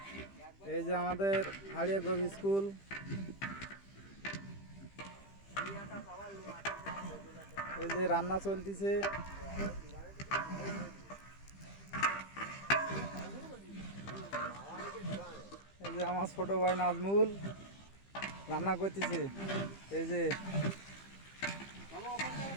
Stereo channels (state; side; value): late; right; 15 ms